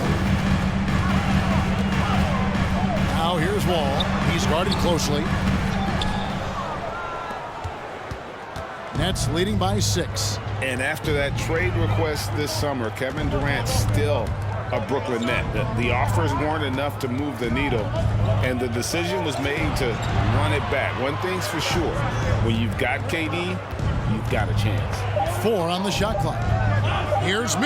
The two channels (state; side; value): identical; both; correlation 1.00